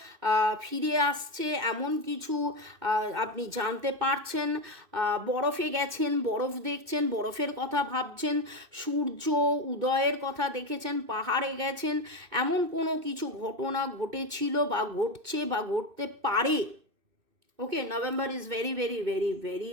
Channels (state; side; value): late; left; 2.6 ms